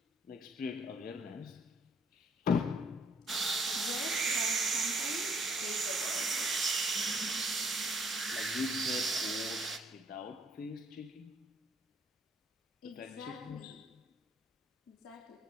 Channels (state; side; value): normal; both; correlation 0.63